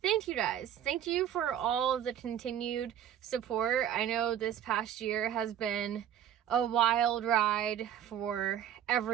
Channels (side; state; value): left; quieter; 10.2 dB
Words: thank you guys. Thank you for all of the continued support. I know this past year has been a wild ride for